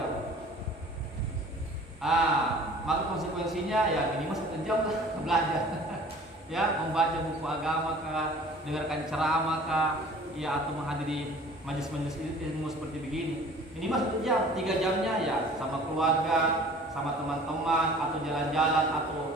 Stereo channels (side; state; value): both; normal; correlation 0.48